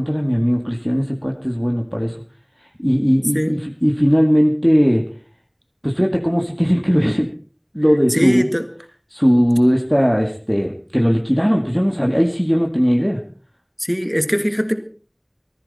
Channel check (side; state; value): both; identical; correlation 1.00